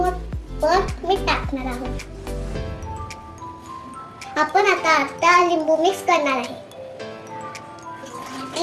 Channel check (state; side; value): identical; both; correlation 1.00